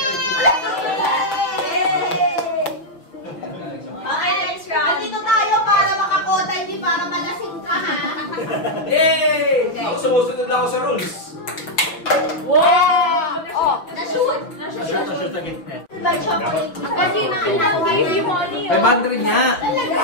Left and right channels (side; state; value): right; late; 5.8 ms